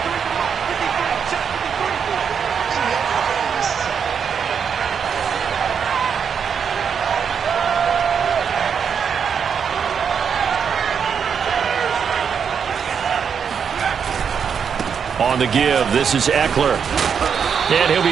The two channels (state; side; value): quieter; left; 7.0 dB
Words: On the give, this is Eckler. And he'll